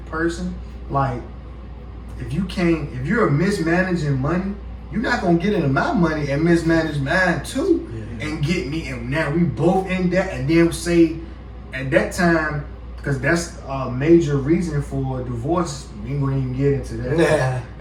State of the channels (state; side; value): identical; both; correlation 1.00